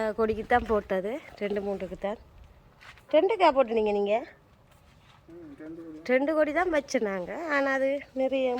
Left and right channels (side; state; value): both; identical; correlation 1.00